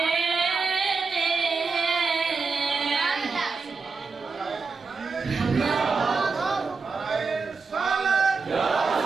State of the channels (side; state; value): left; quieter; 4.6 dB